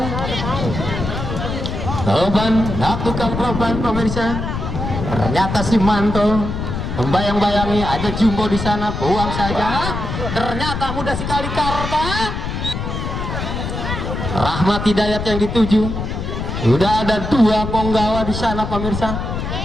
Roban lakukan Roban pemirsa. Ternyata si Manto membayang-bayangi ada Jumbo di sana, buang saja. Ternyata mudah sekali Karta. Rahmat Hidayat yang dituju. Sudah ada dua penggawa di sana pemirsa.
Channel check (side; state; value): left; noise; rumble, 4 dB below the sound